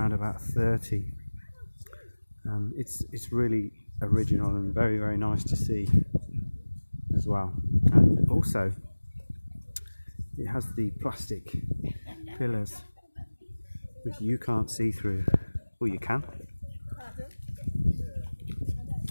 about 30. It's really original and very, very nice to see as well. And also it has the plastic pillars which you can't see through, or you can.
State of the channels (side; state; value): both; inverted; correlation -1.00